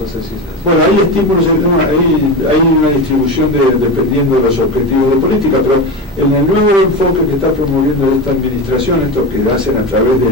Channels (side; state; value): both; normal; correlation 0.22